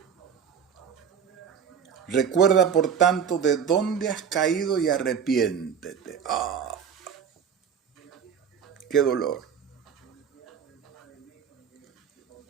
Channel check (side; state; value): left; quieter; 7.5 dB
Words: Recuerda, por tanto, de dónde has caído y arrepiéntete. ¡Ah! ¡Qué dolor!